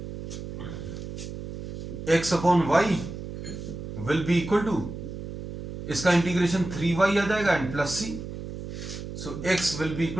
x upon y will be equal to, इसका इंटीग्रेशन 3y आ जाएगा and plus c. So x will be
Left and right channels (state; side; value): noise; right; hum, 9 dB below the sound